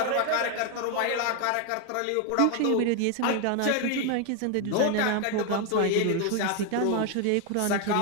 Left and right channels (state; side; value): different; both; correlation 0.01